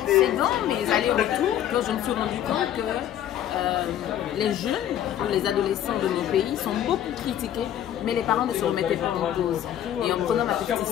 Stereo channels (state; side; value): quieter; right; 11.0 dB